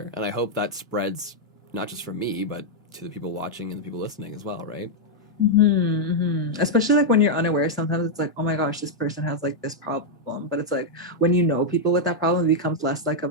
and I hope that spreads not just for me, but to the people watching and the people listening as well, right? Especially like when you're unaware, sometimes it's like, oh my gosh, this person has like this problem, but it's like when you know people with that problem, it becomes less like of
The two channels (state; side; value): normal; both; correlation -0.02